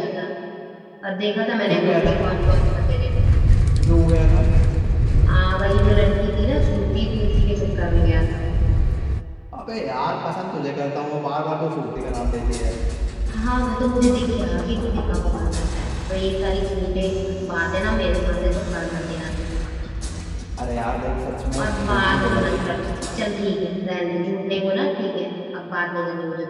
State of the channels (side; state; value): both; identical; correlation 1.00